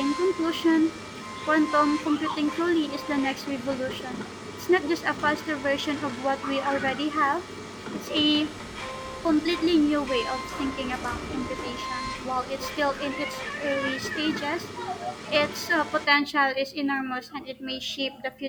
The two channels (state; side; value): identical; both; correlation 1.00